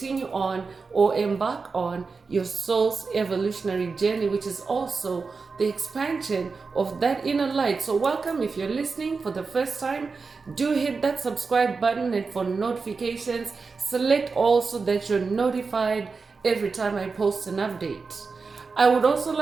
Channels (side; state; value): left; quieter; 4.6 dB